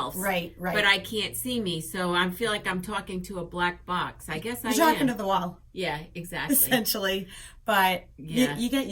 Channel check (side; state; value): both; identical; correlation 1.00